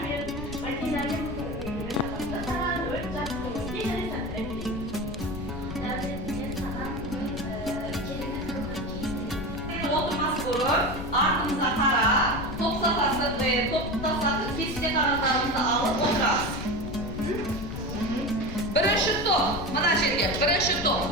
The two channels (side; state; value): left; noise; rumble, 8 dB below the sound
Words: Ardımıza kara, top safhası ve top tasası kesecek aralarımızda alıp oturarız. Birinci top, mana жерге, birinci top.